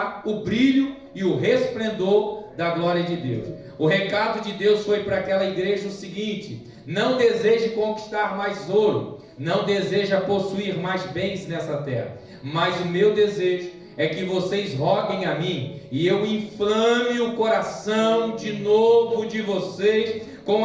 o brilho e o resplendor da glória de Deus. O recado de Deus foi para aquela igreja o seguinte: não deseje conquistar mais ouro, não deseja possuir mais bens nessa terra, mas o meu desejo é que vocês roguem a mim, e eu inflame o coração de novo de vocês com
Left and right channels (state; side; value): identical; both; correlation 1.00